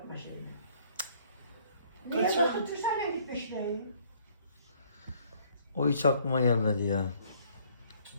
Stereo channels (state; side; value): inverted; both; correlation -0.61